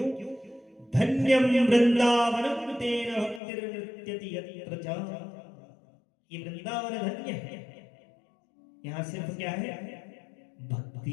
धन्यम वृंदावनम तेन भक्तिर्नृत्यति यत्र च। ये वृंदावन धन्य है। यहाँ सिर्फ क्या है?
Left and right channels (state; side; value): drops out; right; at 3.4 s